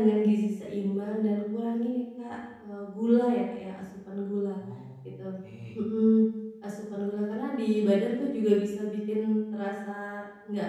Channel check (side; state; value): both; identical; correlation 1.00